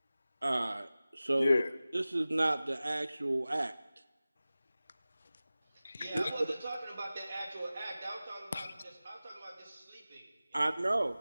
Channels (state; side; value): inverted; both; correlation -0.97